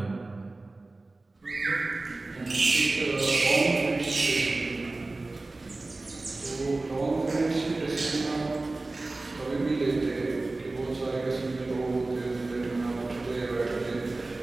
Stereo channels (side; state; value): left; quieter; 3.2 dB